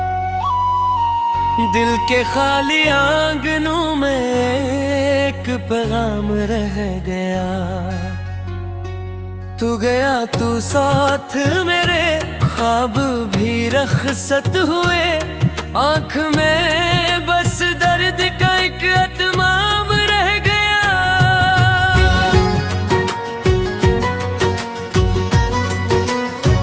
दिल के खाली आंगनों में एक पैगाम रह गया। तू गया तू साथ मेरे, ख्वाब भी रखसत हुए, आँख में बस दर्द का एक अतमाम रह गया।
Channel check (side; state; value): both; identical; correlation 1.00